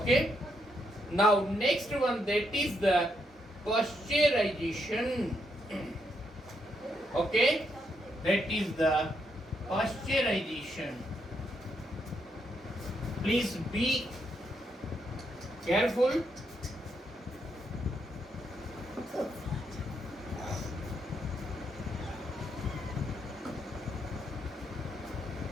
now next one, that is the pasteurization. Okay, that is the pasteurization. Please be careful.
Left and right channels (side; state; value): both; normal; correlation 0.78